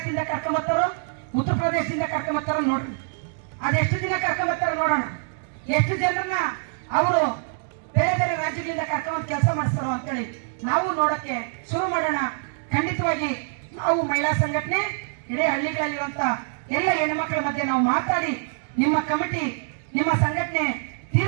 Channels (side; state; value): left; silent; digital silence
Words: ಕರ್ಕೊಂಬರ್ತಾರೋ, ಉತ್ತರ ಪ್ರದೇಶದಿಂದ ಕರ್ಕೊಂಬರ್ತಾರೋ ನೋಡ್ರಿ. ಅದೆಷ್ಟು ದಿನ ಕರ್ಕೊಂಬರ್ತಾರೋ ನೋಡೋಣ. ಎಷ್ಟು ಜನರನ್ನ ಅವರು ಬೇರೆ ಬೇರೆ ರಾಜ್ಯಗಳಿಂದ ಕರ್ಕೊಂಡ್ ಕೆಲಸ ಮಾಡಿಸ್ತಾರೋ ಅಂತೇಳಿ ನಾವು ನೋಡಕ್ಕೆ ಶುರು ಮಾಡೋಣ. ಖಂಡಿತವಾಗಿ ನಾವು ಮಹಿಳಾ ಸಂಘಟನೆ ಇಡೀ ಹಳ್ಳಿಗಳಲ್ಲಿರುವಂತ ಎಲ್ಲ ಹೆಣ್ಮಕ್ಳ ಮಧ್ಯೆ ನಾವು ಮಾತಾಡಿ ನಿಮ್ಮ ಕಮಿಟಿ, ನಿಮ್ಮ ಸಂಘಟನೆ